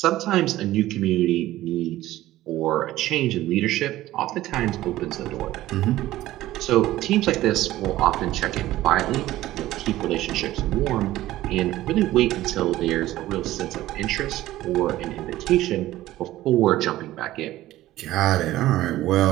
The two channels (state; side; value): quieter; left; 15.4 dB